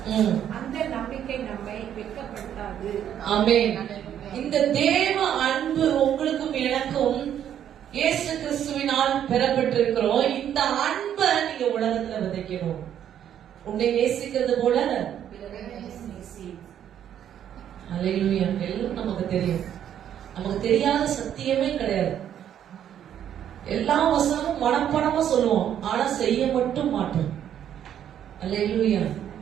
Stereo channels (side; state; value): left; quieter; 10.0 dB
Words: அந்த நம்பிக்கை நம்மை வெட்கப்படுத்தாது. ஆமென். இந்த தேவ அன்பு உங்களுக்கும் எனக்கும் இயேசு கிறிஸ்துவினால் பெறப்பட்டிருக்கிறோம். இந்த அன்பை நீங்க உலகத்துல விதைக்கணும். உன்னை நேசிக்கிறது போல அல்லேலூயா. எல்லாம் நமக்கு தெரியும். நமக்கு தெரியாத சத்தியமே கிடையாது. எல்லா வசனமும் மனப்படமா சொல்லுவோம், ஆனா செய்ய மட்டும் மாட்டோம். அல்லேலூயா.